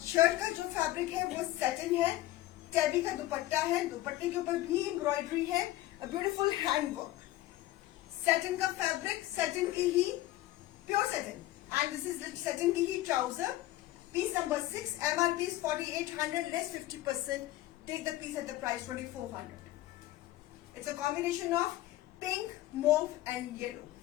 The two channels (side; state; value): right; quieter; 16.0 dB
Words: Shirt का जो फैब्रिक है वो सैटिन है. टैबी का दुपट्टा है. दुपट्टे के ऊपर भी एम्ब्रॉयडरी है. A beautiful handwork. सैटिन का फैब्रिक, सैटिन की ही pure satin. And this is satin की ही trouser Piece number 6, MRP is 4800, less 50%. Take the piece at the price 2400. It's a combination of pink, mauve and yellow.